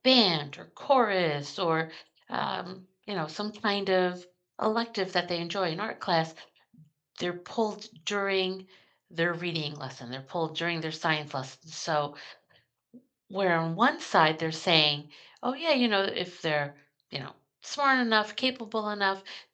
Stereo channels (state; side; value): identical; both; correlation 1.00